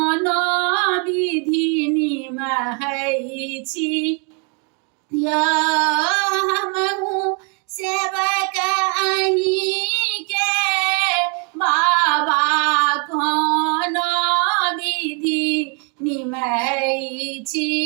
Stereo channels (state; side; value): quieter; left; 37.5 dB